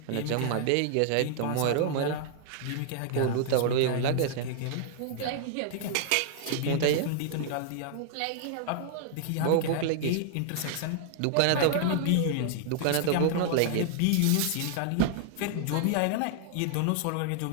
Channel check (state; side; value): different; both; correlation -0.01